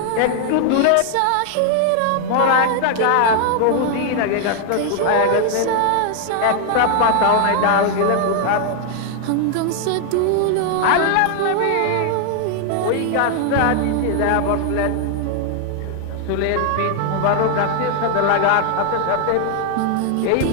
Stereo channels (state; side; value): different; both; correlation 0.00